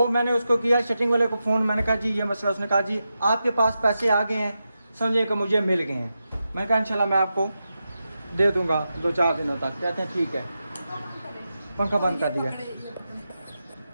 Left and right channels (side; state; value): both; inverted; correlation -0.89